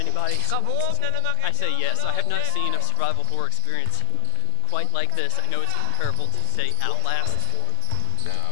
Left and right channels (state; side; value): different; both; correlation 0.01